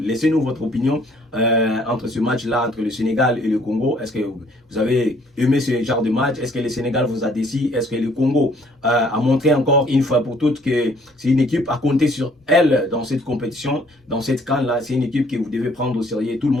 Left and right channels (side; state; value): both; normal; correlation 0.61